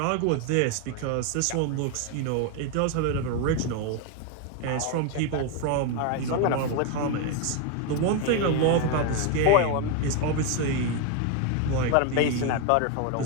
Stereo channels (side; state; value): both; different; correlation 0.01